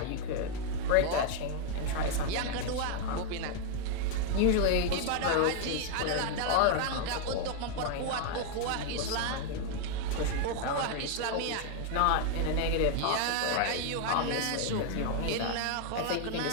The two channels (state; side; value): different; both; correlation 0.00